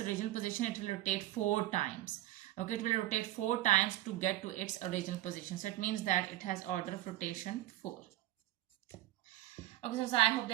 original position, it will rotate 4 times. Okay, it will rotate 4 times to get to its original position. So it means that it has order of rotation 4. Okay, so I hope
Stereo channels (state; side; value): quieter; left; 15.6 dB